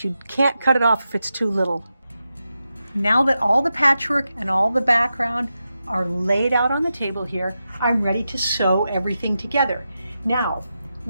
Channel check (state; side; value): inverted; both; correlation -0.89